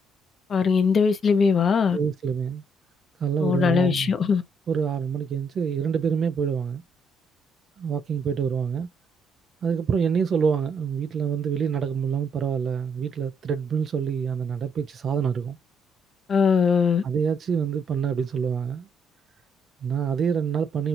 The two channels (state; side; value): normal; both; correlation 0.72